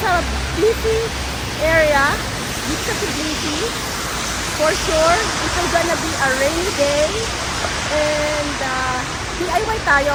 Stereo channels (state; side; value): identical; both; correlation 1.00